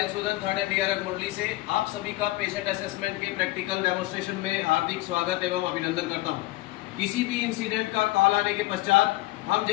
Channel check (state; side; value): quieter; right; 19.1 dB